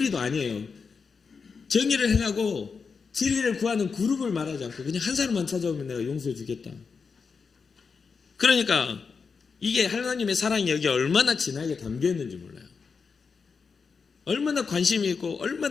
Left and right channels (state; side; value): quieter; right; 5.4 dB